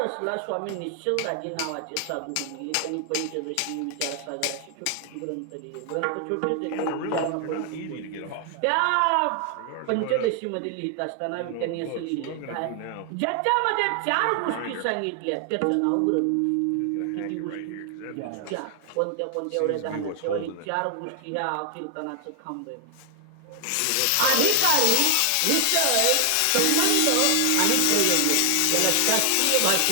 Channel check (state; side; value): different; both; correlation 0.00